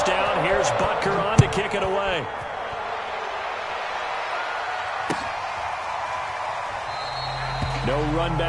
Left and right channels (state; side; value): identical; both; correlation 1.00